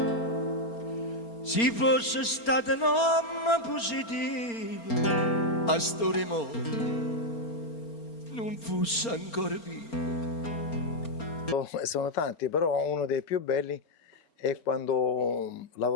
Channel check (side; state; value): right; late; 4.3 ms